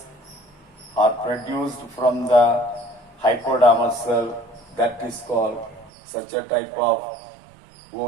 are produced from the hypodermal cell, that is called, such a type of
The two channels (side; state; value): left; drops out; at 5.9 s